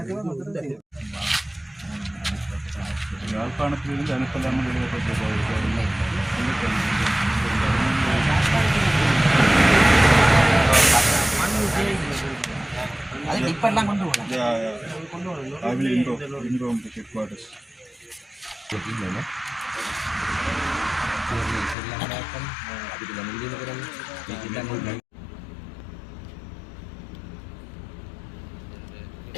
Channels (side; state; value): right; drops out; at 21.8 s